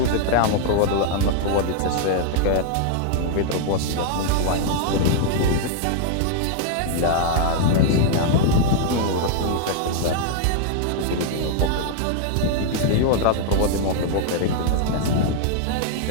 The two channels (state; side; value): different; both; correlation 0.00